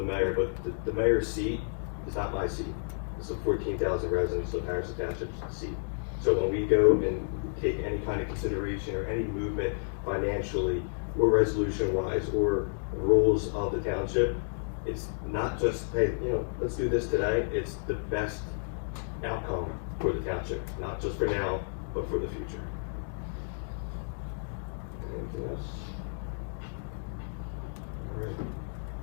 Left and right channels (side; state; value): right; silent; digital silence